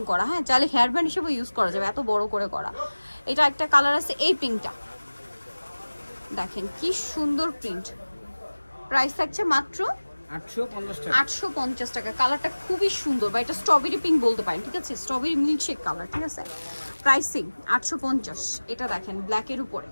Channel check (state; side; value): inverted; both; correlation -1.00